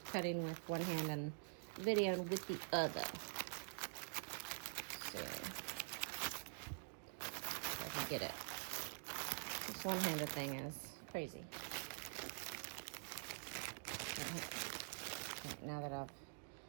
cutting with one hand and videoing with the other. So, if I can get it. This one-handed thing is crazy. Now that I've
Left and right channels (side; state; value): left; silent; digital silence